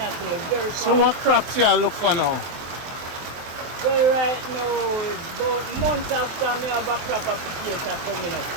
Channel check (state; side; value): late; left; 23 ms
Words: very fast. So what crops you look for now? Well, right now, about months after me have a crop of potato coming up.